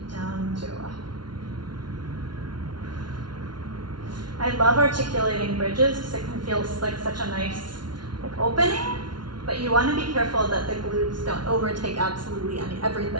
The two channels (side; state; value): left; late; 0.71 ms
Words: down to go up. I love articulating bridges because it can feel like such a nice opening, but you want to be careful that the glutes don't overtake absolutely